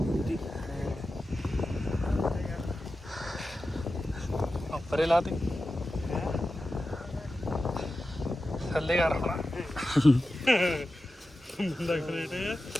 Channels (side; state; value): both; normal; correlation 0.92